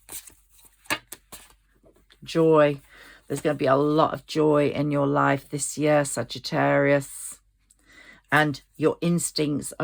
Joy. There's going to be a lot of joy in your life this year, Sagittarius. And your instincts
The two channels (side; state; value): both; identical; correlation 1.00